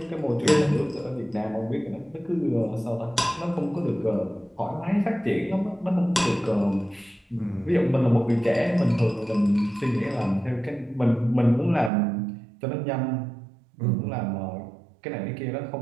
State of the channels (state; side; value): drops out; left; at 11.9 s